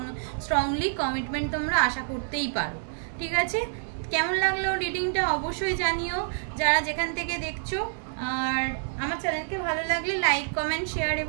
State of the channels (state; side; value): silent; left; 60 dB below the other